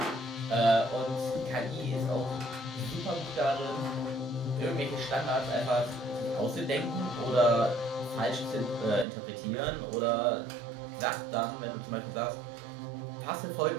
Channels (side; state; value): left; drops out; at 9.1 s